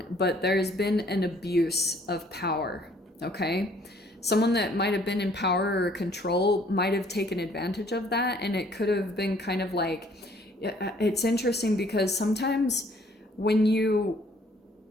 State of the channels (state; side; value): normal; both; correlation 0.60